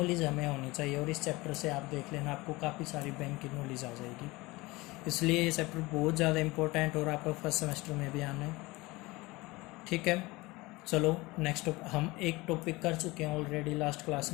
हमें होनी चाहिए। और इस चैप्टर से आप देख लेना, आपको काफ़ी सारी बैंक की नॉलेज आ जाएगी। इसलिए ये चैप्टर बहुत ज़्यादा इंपॉर्टेंट और आपका फर्स्ट सेमेस्टर में भी आना है। ठीक है, चलो नेक्स्ट हम एक टॉपिक कर चुके हैं ऑलरेडी लास्ट क्लास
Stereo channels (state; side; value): quieter; right; 21.9 dB